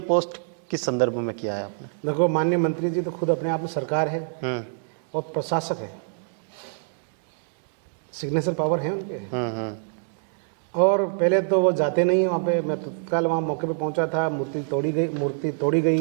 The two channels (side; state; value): left; silent; digital silence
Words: पोस्ट किस संदर्भ में किया है आपने? देखो, माननीय मंत्री जी तो खुद अपने आप में सरकार है और प्रशासक है, सिग्नेचर पावर है उनके। और पहले तो वो जाते नहीं वहाँ पे, मैं तत्काल वहाँ मौके पे पहुँचा था, मूर्ति तोड़ी